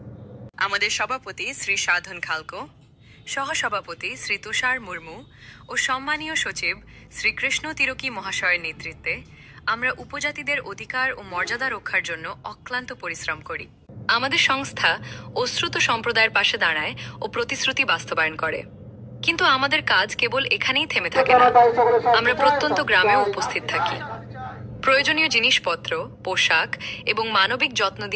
আমাদের সভাপতি শ্রী সাধন খালকো, সহসভাপতি শ্রী তুষার মুর্মু ও সম্মানীয় সচিব শ্রী কৃষ্ণ তিরকি মহাশয়ের নেতৃত্বে আমরা উপজাতিদের অধিকার ও মর্যাদা রক্ষার জন্য অক্লান্ত পরিশ্রম করি। আমাদের সংস্থা অশ্রুত সম্প্রদায়ের পাশে দাঁড়ায় ও প্রতিশ্রুতি বাস্তবায়ন করে। কিন্তু আমাদের কাজ কেবল এখানেই থেমে থাকে না, আমরা প্রত্যন্ত গ্রামেও উপস্থিত থাকি। প্রয়োজনীয় জিনিসপত্র, পোশাক এবং মানবিক যত্ন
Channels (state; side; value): identical; both; correlation 1.00